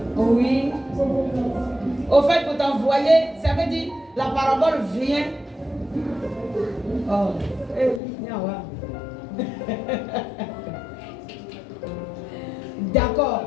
Oui. Au fait, pour t'envoyer, ça veut dire la parabole vient. Oh. D'accord.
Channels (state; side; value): drops out; right; at 8.0 s